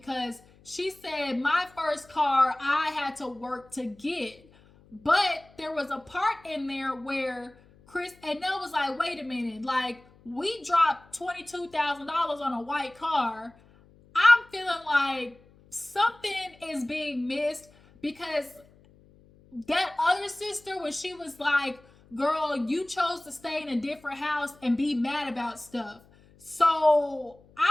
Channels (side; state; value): left; noise; hum, 27 dB below the sound